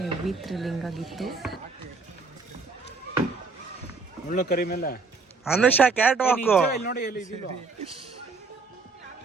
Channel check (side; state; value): left; quieter; 4.2 dB